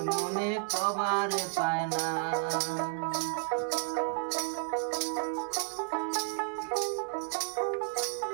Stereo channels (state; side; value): silent; left; 56 dB below the other